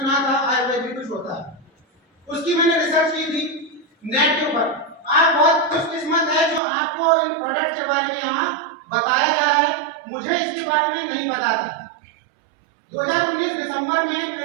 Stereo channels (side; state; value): left; drops out; at 6.6 s